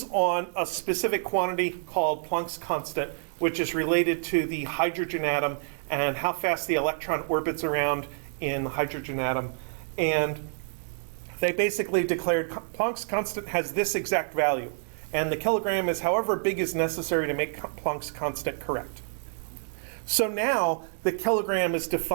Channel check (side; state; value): left; silent; digital silence